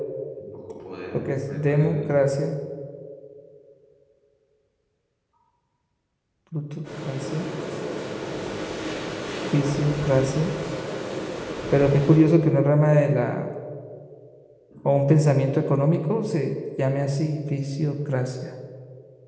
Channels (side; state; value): both; identical; correlation 1.00